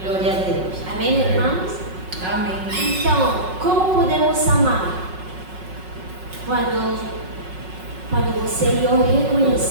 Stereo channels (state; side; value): late; left; 5.4 ms